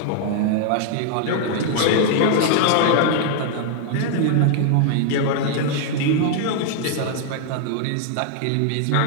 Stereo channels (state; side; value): different; both; correlation 0.00